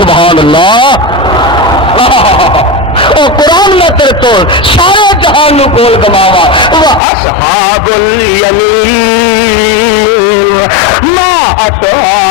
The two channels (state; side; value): drops out; right; at 7.0 s